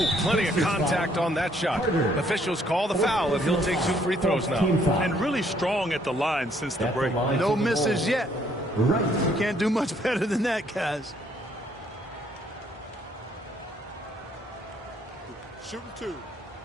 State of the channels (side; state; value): both; normal; correlation 0.66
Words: plenty of contact on that shot. Officials call the foul, and he'll take 2 free throws now. And really strong at the line since the break. No misses yet. You can't do much better than that, guys. Shooting 2.